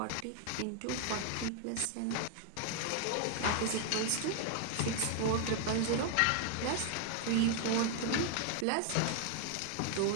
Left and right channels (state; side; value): different; both; correlation 0.00